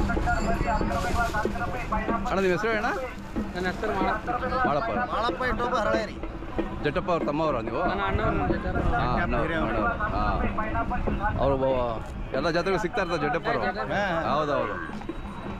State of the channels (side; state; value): both; identical; correlation 1.00